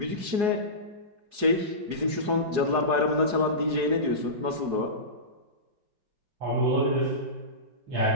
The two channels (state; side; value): late; left; 4.8 ms